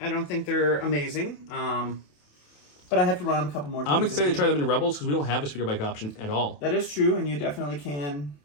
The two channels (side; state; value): right; late; 28 ms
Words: I don't think they're amazing. But I have to run them a couple more times. I'm excited to try them in Rebels because we don't have a speeder bike option at all. That is true, and you definitely can.